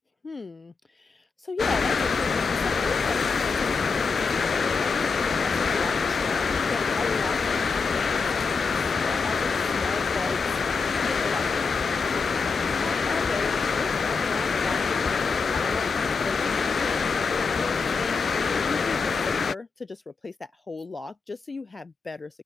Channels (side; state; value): right; quieter; 4.8 dB